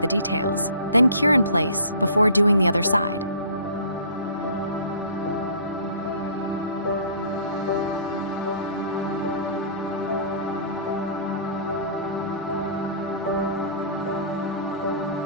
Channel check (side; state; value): both; inverted; correlation -0.47